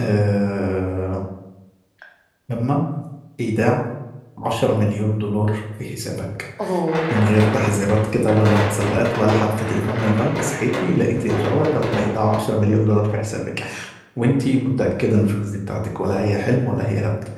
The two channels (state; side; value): identical; both; correlation 1.00